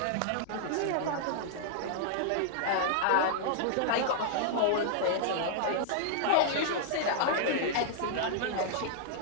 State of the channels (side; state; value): both; different; correlation -0.01